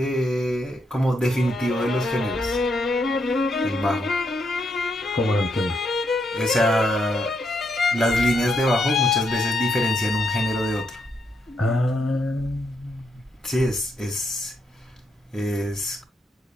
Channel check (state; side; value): normal; both; correlation 0.78